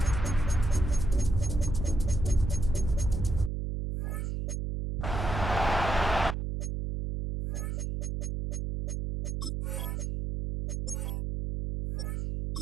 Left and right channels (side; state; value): right; noise; hum, 3 dB below the sound